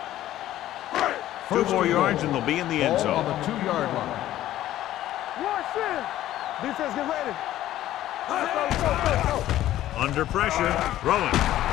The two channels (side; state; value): right; quieter; 13.5 dB